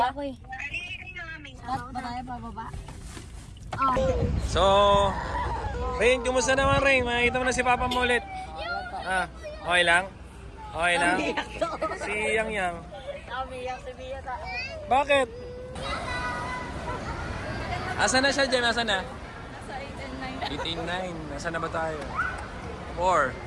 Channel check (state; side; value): identical; both; correlation 1.00